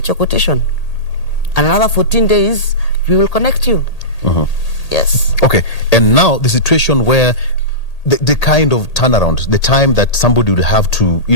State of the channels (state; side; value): late; right; 1.8 ms